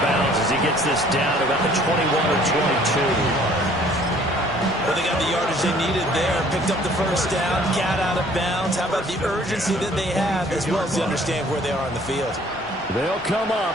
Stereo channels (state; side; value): normal; both; correlation 0.56